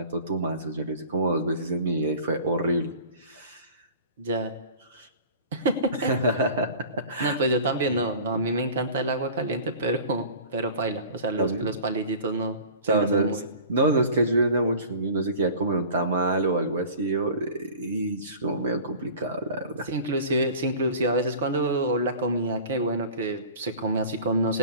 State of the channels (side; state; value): both; inverted; correlation -0.41